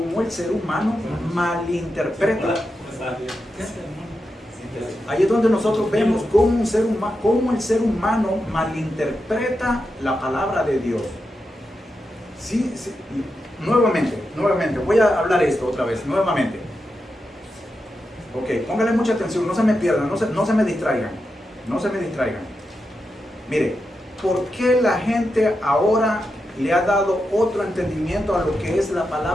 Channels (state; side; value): normal; both; correlation 0.88